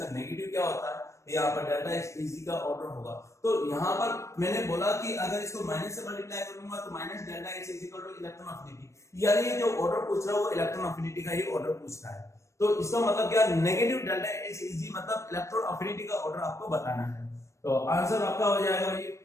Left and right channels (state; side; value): late; right; 0.14 ms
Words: नेगेटिव क्या होता है, यहाँ पर डेल्टा एच इजी का ऑर्डर होगा। तो यहाँ पर मैंने बोला कि अगर इसको माइनस से मल्टीप्लाई करूंगा तो minus delta H is equal two electron affinity, यानी ये जो ऑर्डर पूछ रहा है वो इलेक्ट्रॉन अफिनिटी का ही ऑर्डर पूछ रहा है। तो इसका मतलब क्या, नेगेटिव डेल्टा एच इजी मतलब इलेक्ट्रॉन अफिनिटी का ऑर्डर आपको बताना है। तो आंसर आपका हो जाएगा भाई,